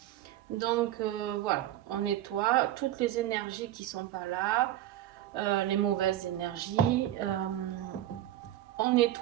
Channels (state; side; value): quieter; left; 13.0 dB